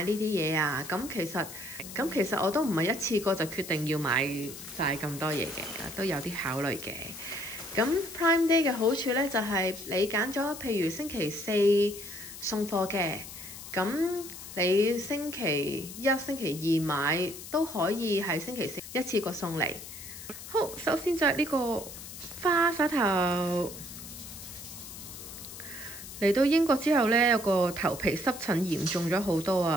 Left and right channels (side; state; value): left; noise; hiss, 12 dB below the sound